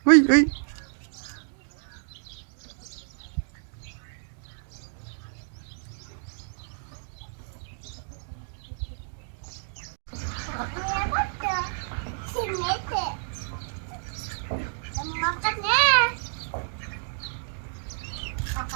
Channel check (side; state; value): left; silent; digital silence